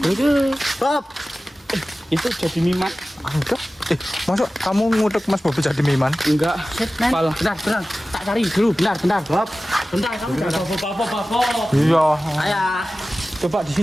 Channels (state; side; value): normal; both; correlation 0.96